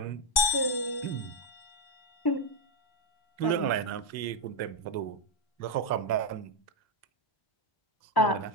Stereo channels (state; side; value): late; right; 1.2 ms